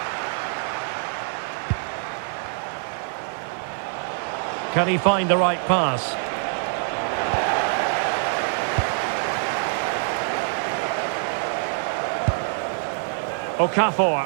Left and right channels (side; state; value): left; silent; 62 dB below the other